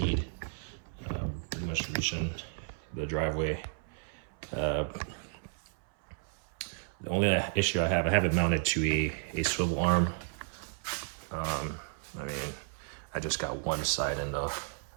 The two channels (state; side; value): silent; left; 56 dB below the other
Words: Pretty much reaching the driveway. The only issue I have it mounted to a swivel arm. I mean, I just got one side in the